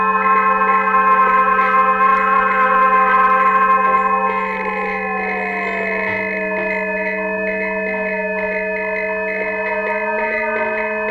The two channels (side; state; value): both; identical; correlation 1.00